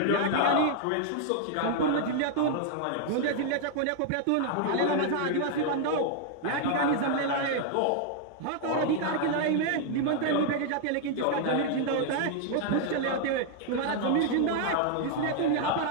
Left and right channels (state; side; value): different; both; correlation 0.00